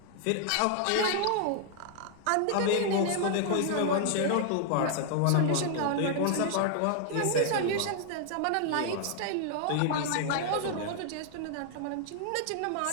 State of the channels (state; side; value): different; both; correlation 0.00